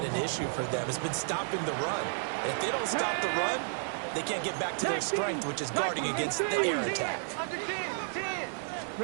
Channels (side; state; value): left; silent; digital silence